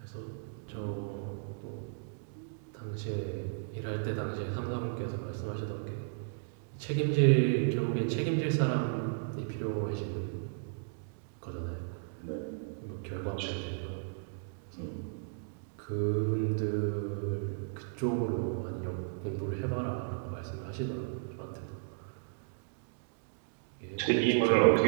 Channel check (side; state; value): left; silent; digital silence